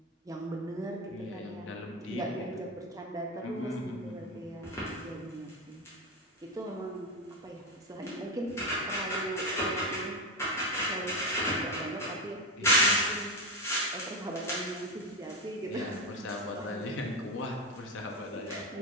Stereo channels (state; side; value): normal; both; correlation 0.14